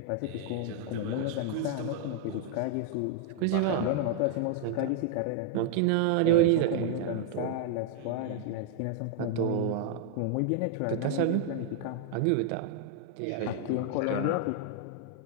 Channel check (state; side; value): different; both; correlation 0.00